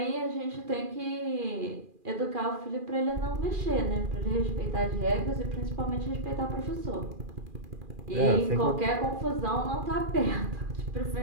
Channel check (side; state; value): left; late; 2.4 ms